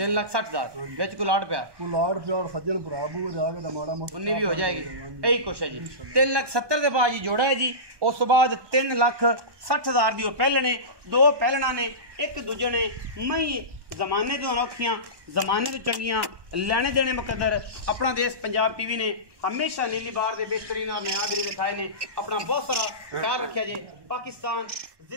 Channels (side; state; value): left; late; 1.1 ms